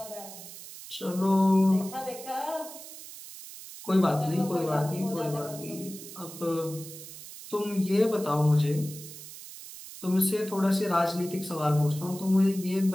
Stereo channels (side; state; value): right; noise; hiss, 14 dB below the sound